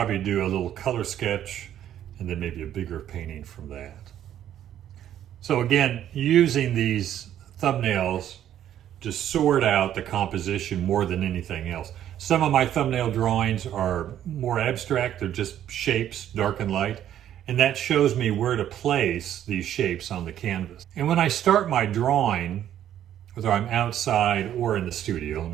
do a little color sketch and then maybe a bigger painting from that. So again, using these thumbnails to sort out the composition more than anything else. Some of my thumbnail drawings are more abstract. They're just shapes, dark and light. And that shows me where to place these shapes on the canvas. And when I start my drawing, whether I'm outside or in the studio, let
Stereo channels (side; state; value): left; quieter; 11.0 dB